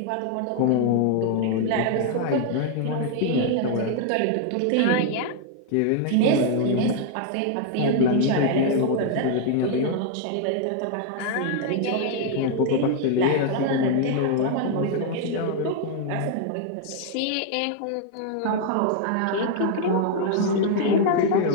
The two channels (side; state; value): both; different; correlation 0.00